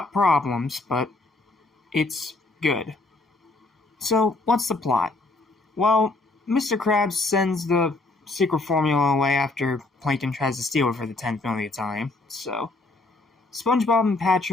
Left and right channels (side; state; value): right; quieter; 3.2 dB